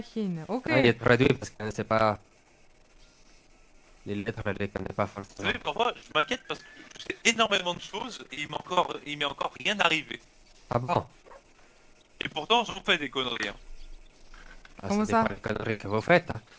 Ok. Ah, il est traduit parce qu'on ne sait pas. Les lettres, elle les connaît pas Vous forcément. savez, parfois, je m'inquiète parce que je sais énormément de choses et il m'est encore rien arrivé. Ah bon? Et pourtant, j'en fais des conneries. Hein. Ah, Comment c'est ça? pas les conneries que vous faites. Hein.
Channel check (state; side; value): identical; both; correlation 1.00